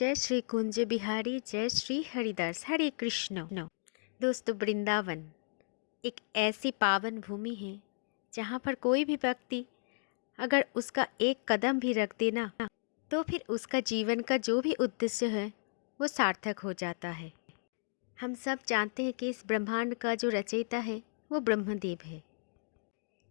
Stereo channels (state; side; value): silent; right; digital silence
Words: श्री कुंज बिहारी, जय श्री हरिदास, हरे कृष्ण। दोस्तों, वृंदावन एक ऐसी पावन भूमि है जहाँ पर कोई भी व्यक्ति अगर उसका एक कदम भी रख देना तो फिर उसका जीवन का जो भी उद्देश्य है वो सार्थक हो जाता है। हम सब जानते हैं कि इस ब्रह्मांड का जो रचयिता है वो ब्रह्मदेव है,